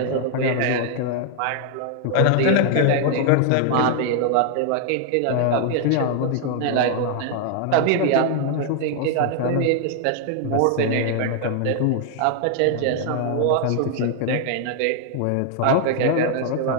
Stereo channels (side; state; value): both; different; correlation 0.00